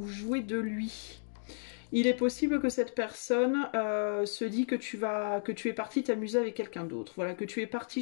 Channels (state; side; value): silent; right; digital silence